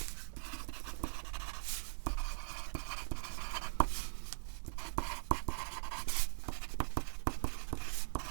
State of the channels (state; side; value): silent; left; digital silence